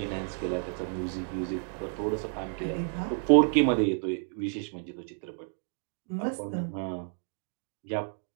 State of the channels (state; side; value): silent; left; 57 dB below the other